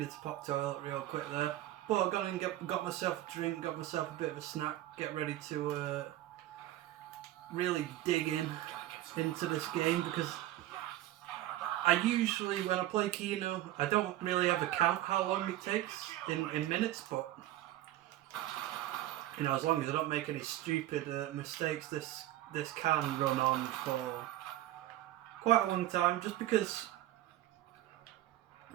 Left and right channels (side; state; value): left; quieter; 14.5 dB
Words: to pop toilet real quick there. But I've gone and got myself a drink, got myself a bit of a snack, get ready to really dig into this game, because I usually, when I play Kino, I don't really ever count how long it takes in minutes, but as long as I don't make any stupid mistakes, this can run on for quite a long time, just because